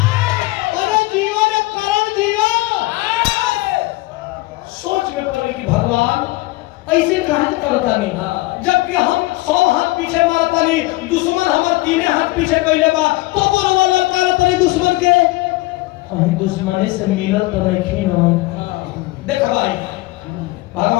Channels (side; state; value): right; quieter; 20.3 dB